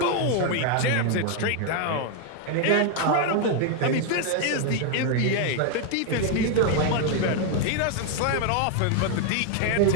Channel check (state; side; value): different; both; correlation 0.00